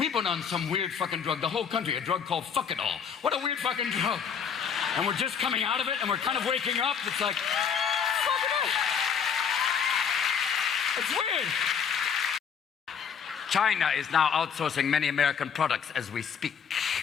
been on some weird fucking drug. The whole country, a drug called Fuck-It-All. What a weird fucking drug. And we're just coming out of it, and we're kind of waking up. It's like, fuck it all. It's weird. China is now outsourcing many American products as we speak.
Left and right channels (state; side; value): quieter; right; 7.1 dB